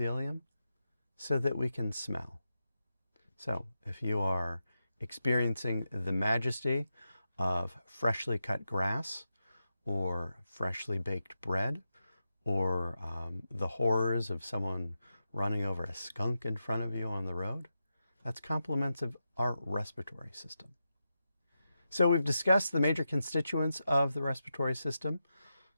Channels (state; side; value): inverted; both; correlation -0.89